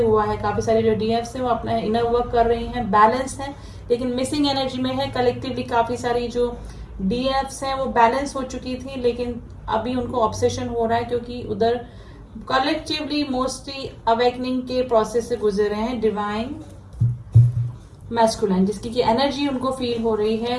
है। काफी सारे जो डीएफ्स है वो अपना इनर वर्क कर रही हैं, बैलेंस है, लेकिन मिसिंग एनर्जी में है। कलेक्टिवली काफी सारी जो डीएफ्स हैं वो बैलेंस हो चुकी थी, लेकिन अभी उनको ऑब्सेशन हो रहा है क्योंकि उधर कलेक्टिवली मोस्टली अवेकनिंग के प्रोसेस से गुजर रहे हैं डिवाइन मैस्कुलाइन, जिसकी की एनर्जी उनको फील हो रही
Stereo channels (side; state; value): both; identical; correlation 1.00